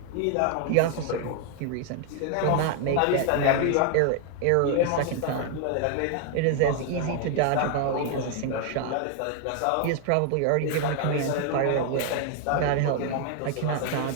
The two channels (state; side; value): different; both; correlation 0.00